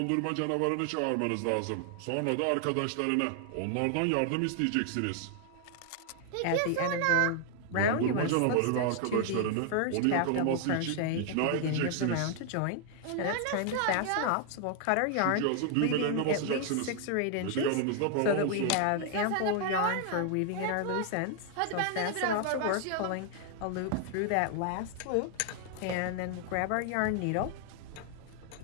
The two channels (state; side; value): different; both; correlation 0.00